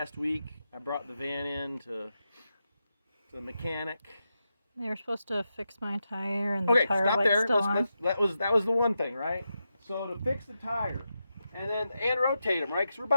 week, I brought the van in to the mechanic? They were supposed to fix my tire, and the tire light's still on. That was the one thing, right? So to fix the tire, and rotate them, right? Because we're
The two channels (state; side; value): inverted; both; correlation -0.88